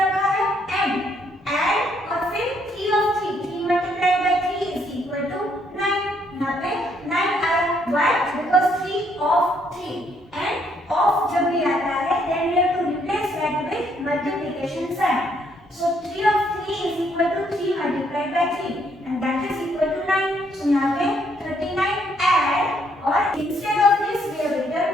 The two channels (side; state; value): both; normal; correlation 0.70